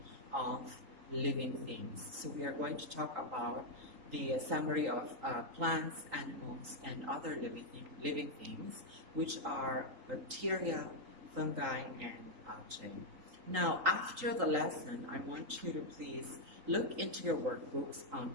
of living things. So we are going to talk about the summary of plants, animals, and other living things, which are bacteria, fungi, and algae. Now, after the lesson, I want you to please look into your workbooks on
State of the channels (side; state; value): left; late; 3.8 ms